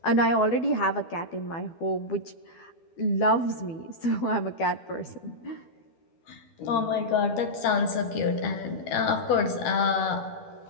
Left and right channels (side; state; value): right; late; 12 ms